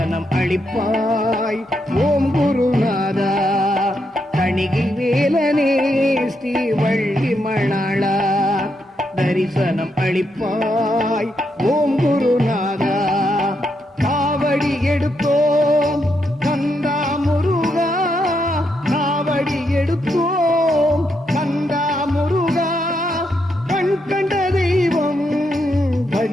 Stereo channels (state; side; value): normal; both; correlation 0.80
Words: அளிப்பாய் ஓம் குருநாதா. தணிகை வேலனே ஸ்ரீ வள்ளி மணாளா, தரிசனம் அளிப்பாய் ஓம் குருநாதா. காவடி எடுத்தோம் கந்தா முருகா, காவடி எடுத்தோம் கந்தா முருகா, கண் கண்ட தெய்வம்